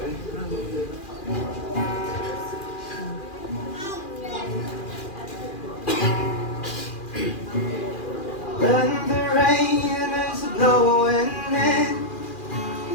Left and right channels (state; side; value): late; right; 2.4 ms